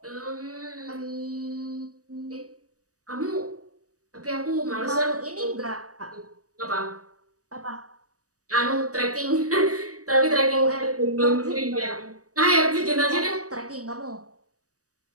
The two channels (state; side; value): late; left; 0.66 ms